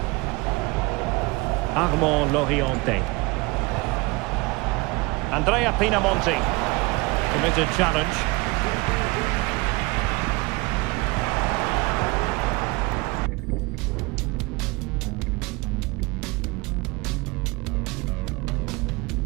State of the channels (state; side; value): quieter; left; 25.0 dB